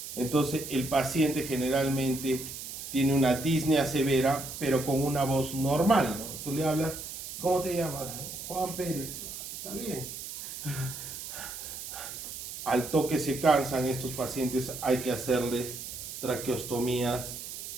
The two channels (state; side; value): noise; right; hiss, 9 dB below the sound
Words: Entonces el paciente generalmente tiene una disnea severa, pero con una voz normal, ¿no? Tú le hablas, ¿cómo te llamas? Juan Pérez. Está bien. Al toque se cansan estos pacientes, hay que hacerles traqueostomías